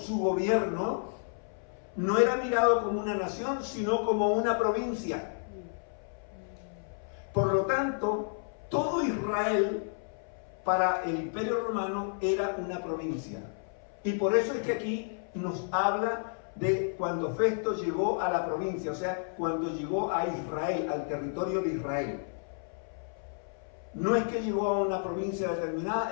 gobierno no era mirado como una nación, sino como una provincia. Por lo tanto, todo Israel para el imperio romano era una provincia. Y por eso es que aquí nos habla de cuando Festo llegó a la provincia, o sea, cuando llegó a Israel, al territorio de Israel. No es que llegó a una provincia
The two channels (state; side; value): silent; right; 57 dB below the other